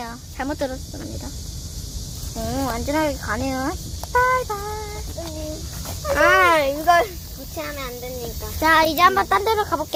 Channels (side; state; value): both; identical; correlation 1.00